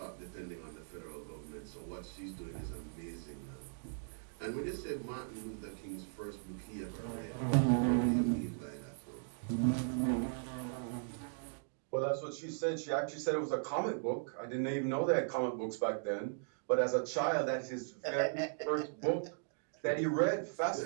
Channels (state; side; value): silent; left; digital silence